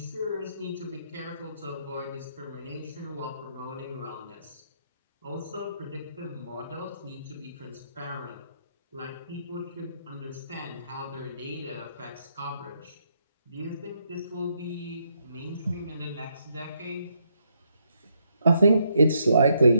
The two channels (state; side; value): inverted; both; correlation -0.76